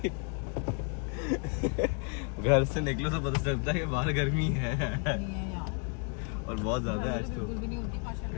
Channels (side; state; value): right; quieter; 38.0 dB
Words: घर से निकलो तो पता चलता है कि बाहर गर्मी है और बहुत ज़्यादा है आज तो।